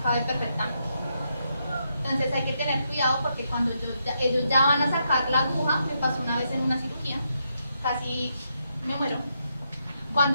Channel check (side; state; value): both; inverted; correlation -0.80